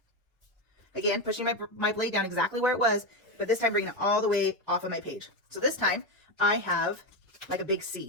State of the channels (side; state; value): both; normal; correlation 0.11